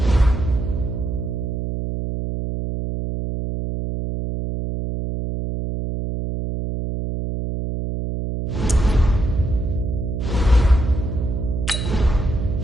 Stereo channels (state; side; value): noise; right; hum, 3 dB below the sound